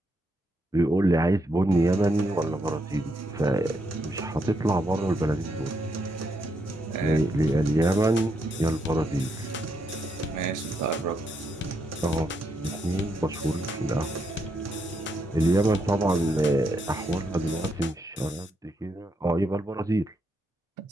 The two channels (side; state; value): both; normal; correlation 0.79